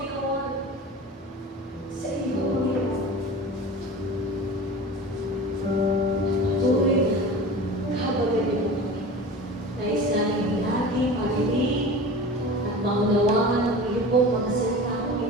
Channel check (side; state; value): both; normal; correlation 0.36